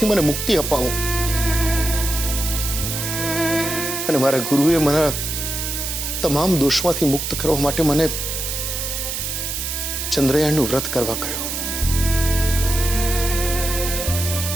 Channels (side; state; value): right; noise; hiss, 3 dB below the sound